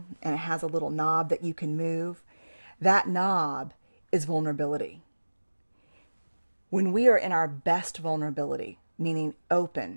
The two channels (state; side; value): inverted; both; correlation -1.00